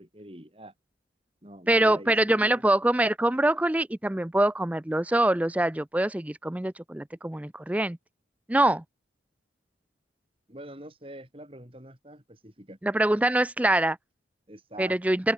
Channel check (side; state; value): both; normal; correlation 0.84